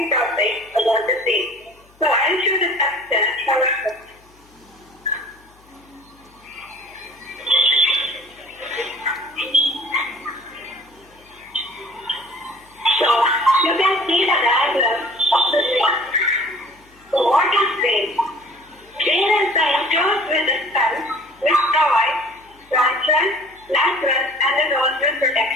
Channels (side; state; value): left; noise; hum, 30 dB below the sound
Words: topic about the same. So I'll show the structure however. So you can see the diagram of the ring. So what is ring? Ring is the enclosed with the skull which provides frontal, lateral and the dorsal